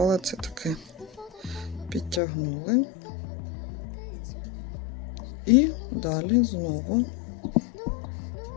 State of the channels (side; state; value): right; drops out; at 2.2 s